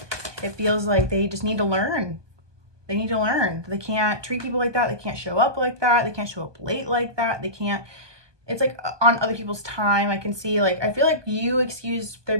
It feels like they just need to learn. They need to learn. They can't treat people like that. They can't show up like that. They can't show up late like that. They can't, it's like on other people's time. I can see, like, I feel like you excused their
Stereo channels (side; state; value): left; late; 1.2 ms